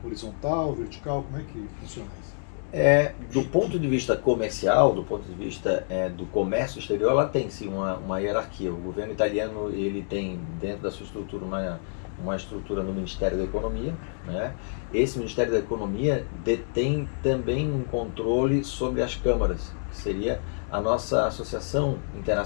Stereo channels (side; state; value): right; silent; 60 dB below the other